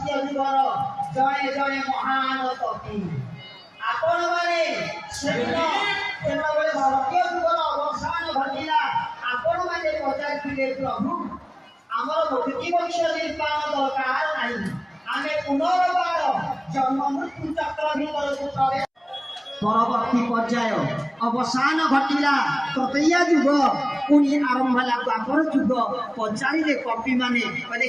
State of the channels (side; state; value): both; identical; correlation 1.00